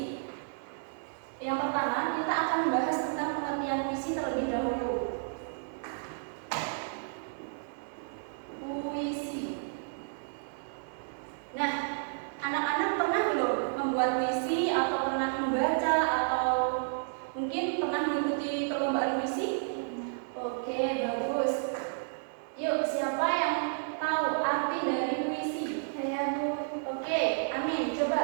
Yang pertama, kita akan membahas tentang pengertian puisi terlebih dahulu. Puisi. Nah, anak-anak pernah belum membuat puisi atau pernah membaca atau mungkin pernah mengikuti perlombaan puisi? Oke, bagus. Yuk, siapa yang tahu arti dari puisi? Saya, Bu. Oke, Amin, coba.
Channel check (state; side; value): silent; left; digital silence